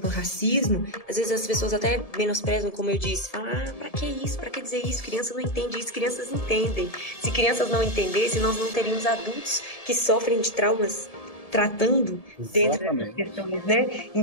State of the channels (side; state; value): right; late; 1.7 ms